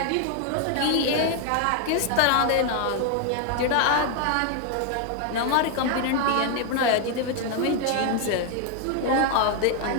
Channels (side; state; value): both; different; correlation 0.00